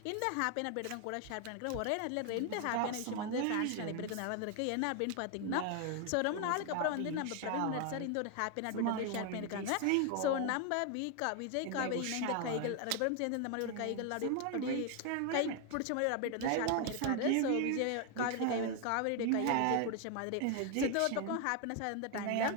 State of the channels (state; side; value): different; both; correlation 0.01